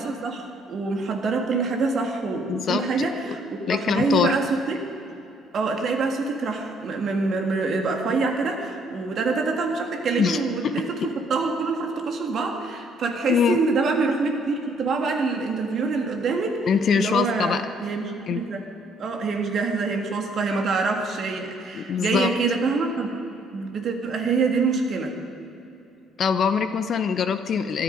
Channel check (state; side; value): normal; both; correlation 0.64